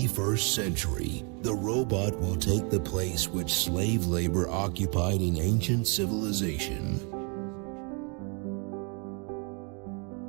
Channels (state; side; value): quieter; left; 35.1 dB